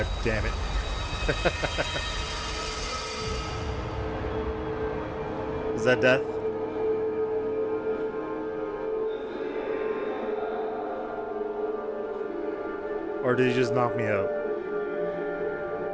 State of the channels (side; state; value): both; identical; correlation 1.00